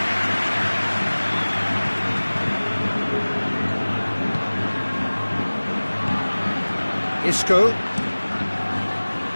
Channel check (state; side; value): inverted; both; correlation -1.00